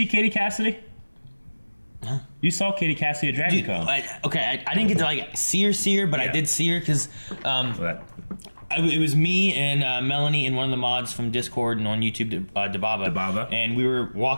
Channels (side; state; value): both; inverted; correlation -1.00